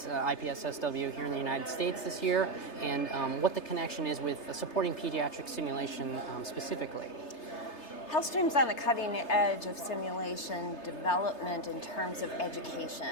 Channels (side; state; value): right; late; 3.3 ms